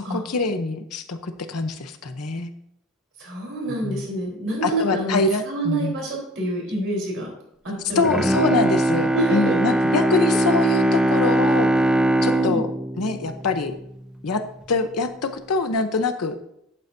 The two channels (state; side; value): normal; both; correlation 0.48